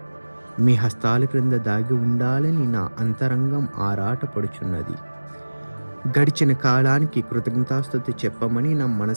మీ హస్తాల క్రింద దాగి ఉండాలని నా అంతరంగం ఆరాటపడుచున్నది. గడిచిన కాలానికి కృతజ్ఞతాస్తుతి చెప్పమని నా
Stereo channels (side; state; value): both; inverted; correlation -1.00